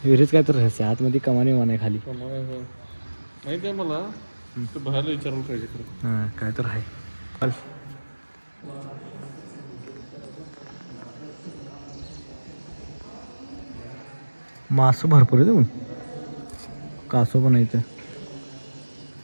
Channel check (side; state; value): both; inverted; correlation -1.00